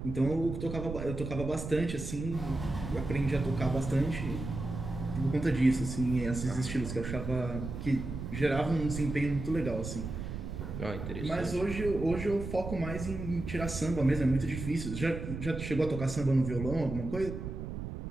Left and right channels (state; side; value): noise; right; rumble, 7 dB below the sound